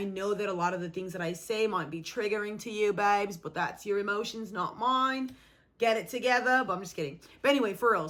know that a lot of the things that I say might be triggering to you, babes, but that's your emotions, not mine. Get it together. But I'm just kidding. But anyway, for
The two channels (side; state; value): both; identical; correlation 1.00